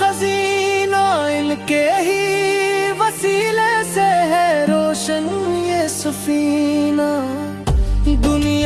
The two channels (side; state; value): both; identical; correlation 1.00